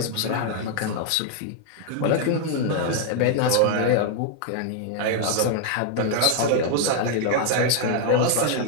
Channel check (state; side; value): different; both; correlation 0.00